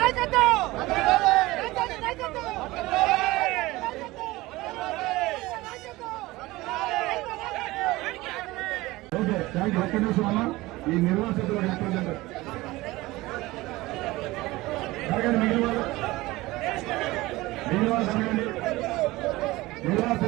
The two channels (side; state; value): left; quieter; 19.6 dB